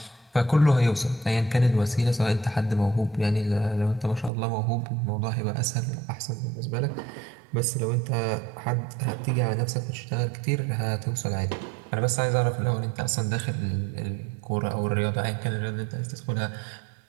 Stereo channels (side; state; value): left; drops out; at 4.3 s